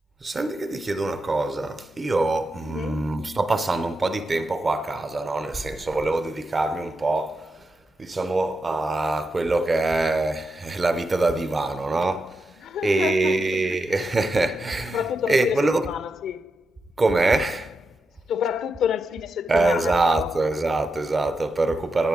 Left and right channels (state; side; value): normal; both; correlation 0.87